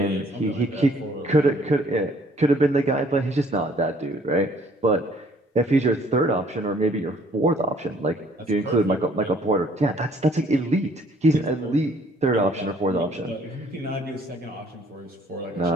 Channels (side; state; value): both; normal; correlation 0.60